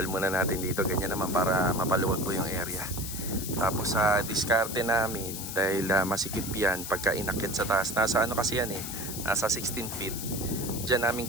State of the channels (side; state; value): left; noise; hiss, 7 dB below the sound